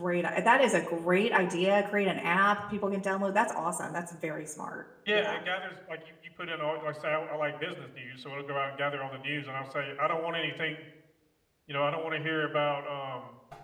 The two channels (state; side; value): identical; both; correlation 1.00